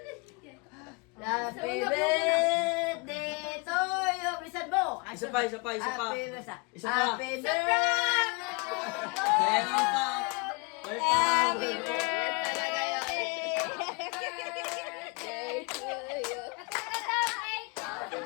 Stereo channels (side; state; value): right; quieter; 31.0 dB